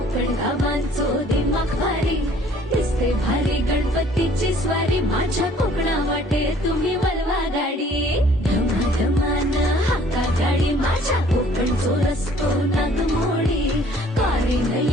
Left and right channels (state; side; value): normal; both; correlation 0.57